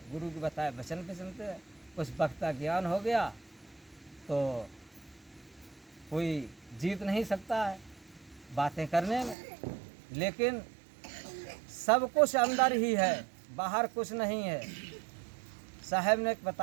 गुरु के बताए वचन पे चलते। कुछ वक्त का ज्ञान हो गया तो कोई जीत नहीं सकता है बातें करने में, लेकिन सब कुछ अंदर ही है, बाहर कुछ नहीं है। साहब ने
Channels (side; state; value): left; drops out; at 9.3 s